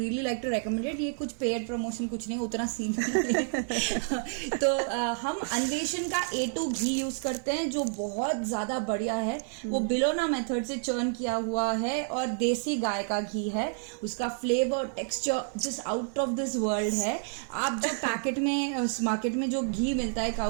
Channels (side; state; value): left; silent; 58 dB below the other